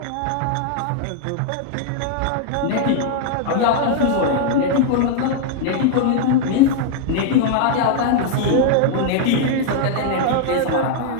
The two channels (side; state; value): both; different; correlation 0.00